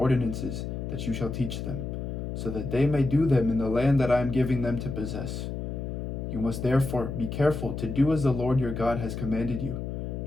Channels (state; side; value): noise; left; hum, 5 dB below the sound